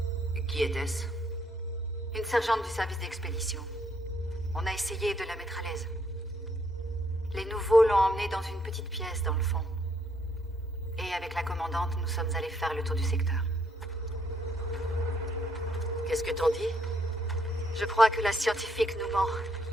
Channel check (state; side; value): normal; both; correlation 0.71